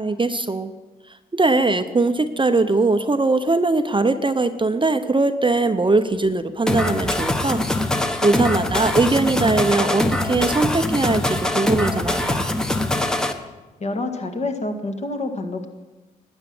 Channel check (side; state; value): both; normal; correlation 0.70